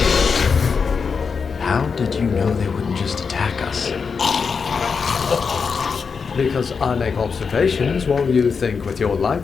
How did you know they wouldn't just attack us? Because I make observations while you think with your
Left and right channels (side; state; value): right; quieter; 5.5 dB